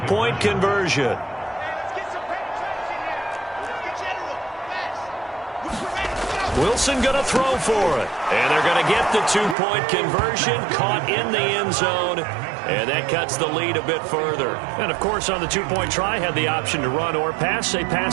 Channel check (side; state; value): left; drops out; at 9.6 s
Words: conversion. Wilson going to throw for it. And they're going to get the two-point conversion, caught in the end zone. And that cuts the lead a bit further. And, of course, on the two-point try, had the option to run or pass. They